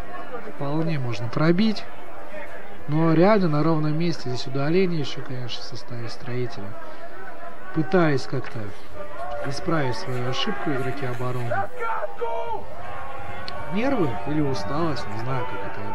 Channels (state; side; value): identical; both; correlation 1.00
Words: Вполне можно пробить. Но реально на ровном месте. Здесь удаление еще, конечно, в составе строителя. Пытаясь как-то исправить свою ошибку игроки обороны. Нервы или усталость, не знаю, как это